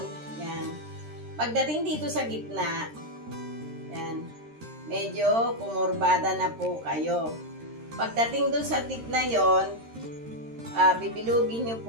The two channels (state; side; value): late; left; 13 ms